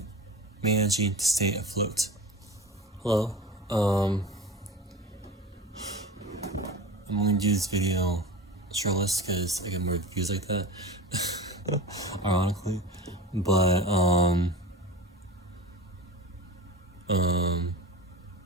managing to stay afloat. Hello. I'm going to do this video shirtless because I get more views like that. Ironically. But,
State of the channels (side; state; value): both; normal; correlation 0.32